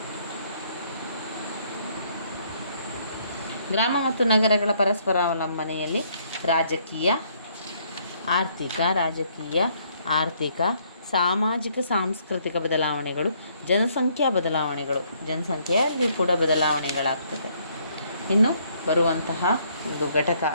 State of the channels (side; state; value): both; inverted; correlation -0.67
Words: ಗ್ರಾಮ ಮತ್ತು ನಗರಗಳ ಪರಸ್ಪರ ಅವಲಂಬನೆಯಲ್ಲಿ ರಾಜಕೀಯ, ಆರ್ಥಿಕ, ಸಾಮಾಜಿಕ, ಸಾಂಸ್ಕೃತಿಕ ಬದಲಾವಣೆಗಳು, ಜನಸಂಖ್ಯೆಯಲ್ಲಿ ಕೂಡ ಬದಲಾವಣೆಗಳಾಗ್ತದೆ. ಇನ್ನು ಬರುವಂತಹ ಒಂದು ಘಟಕ